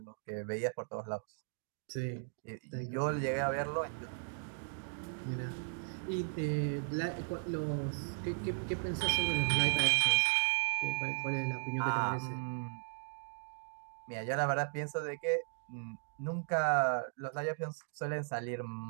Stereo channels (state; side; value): silent; left; digital silence